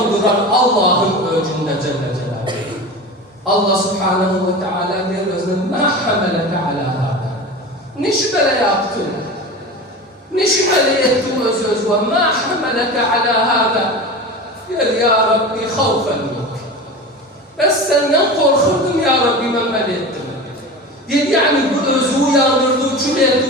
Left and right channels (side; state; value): both; normal; correlation 0.30